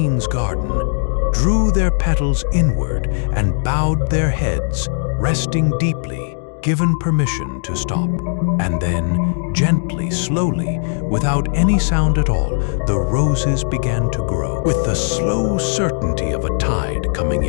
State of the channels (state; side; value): silent; right; digital silence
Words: garden, drew their petals inward and bowed their heads, resting deeply, given permission to stop. And then, gently, slowly, without any sound at all, the roses began to grow, with the slow certainty of a tide coming